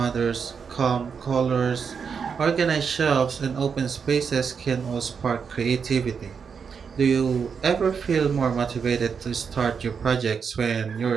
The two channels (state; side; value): quieter; left; 6.2 dB